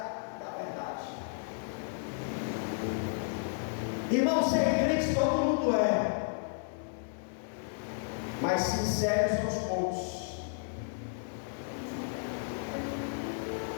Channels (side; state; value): right; silent; 56 dB below the other